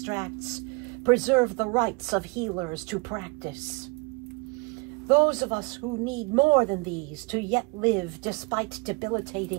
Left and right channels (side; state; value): left; quieter; 28.5 dB